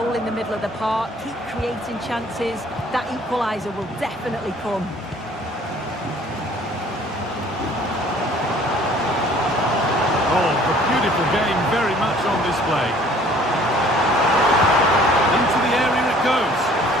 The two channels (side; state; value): both; normal; correlation 0.55